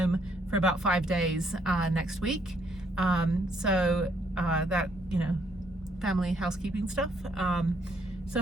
for about 5 days next week. So that, you know, family housekeeping stuff. So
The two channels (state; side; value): normal; both; correlation 0.70